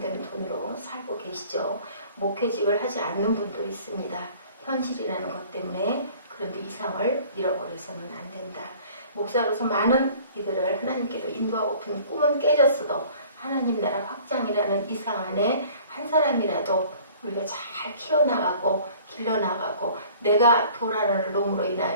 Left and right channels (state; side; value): inverted; both; correlation -0.50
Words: 돈으로 살고 계시죠. 목회직을 하지 않는 분도 있습니다. 현실이라는 것 때문에. 그런데 이상을 잃어버려서는 안 된다. 목사로서 많은 이들을 하나님께로 인도하고픈 꿈은 깨졌어도 하나님 나라 확장이라는 이상 안에 한 사람이라도 우리가 잘 키워나가고 길러나가고 내가 돌아가는 놈으로